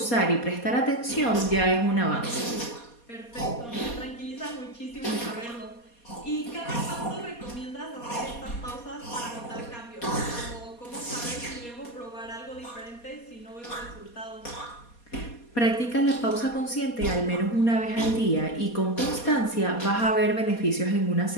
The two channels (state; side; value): late; right; 4.2 ms